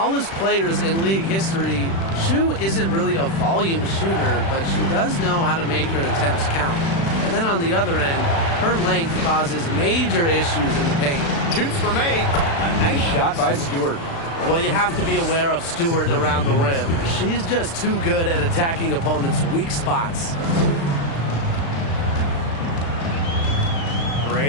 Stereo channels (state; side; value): late; right; 36 ms